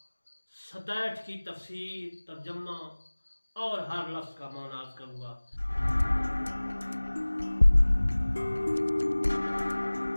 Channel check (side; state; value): both; inverted; correlation -1.00